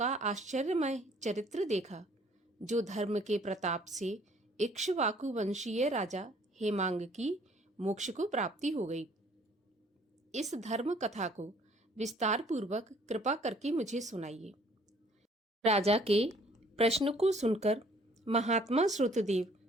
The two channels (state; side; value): normal; both; correlation 0.59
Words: आश्चर्यमय चरित्र देखा, जो धर्म के प्रताप से इक्ष्वाकु वंशीय राजा हेमांग की मोक्ष को प्राप्ति हो गई। इस धर्म कथा को विस्तार पूर्वक कृपा करके मुझे सुनाइए। राजा के प्रश्न को सुनकर महात्मा श्रुतदेव